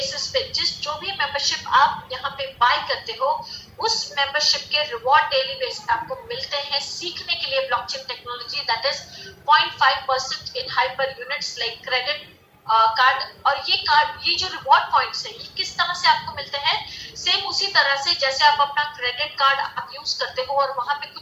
पे जो भी मेंबरशिप आप यहाँ पे बाय करते हो, उस मेंबरशिप के रिवॉर्ड डेली बेसिस पे आपको मिलते हैं सीखने के लिए blockchain technology. That is 0.5% in hyper units like credit card. और ये जो रिवॉर्ड पॉइंट्स है ये किस तरह से आपको मिलते हैं, सेम उसी तरह से जैसे आप अपना क्रेडिट कार्ड आप यूज करते हो और वहां पे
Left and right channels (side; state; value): both; identical; correlation 1.00